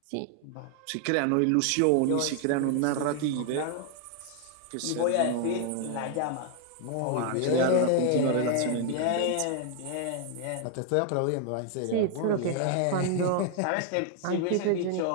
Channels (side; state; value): both; different; correlation 0.00